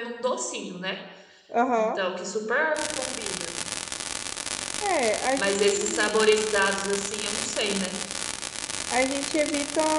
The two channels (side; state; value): both; identical; correlation 1.00